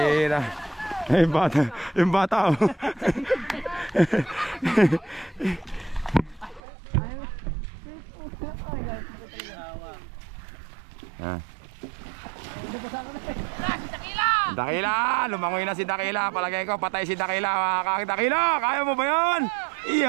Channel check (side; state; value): left; drops out; at 6.6 s